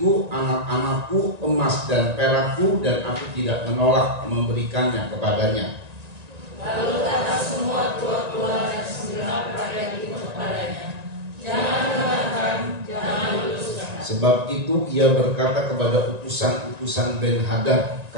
anak-anakku, emas dan perakku, dan aku tidak menolak memberikannya kepadanya. Lalu kata semua tua-tua dan segenap rakyat itu kepadanya, jangan dengarkan, jangan luluskan. Sebab itu ia berkata kepada utusan-utusan Ben-Hadad,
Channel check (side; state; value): left; late; 1.9 ms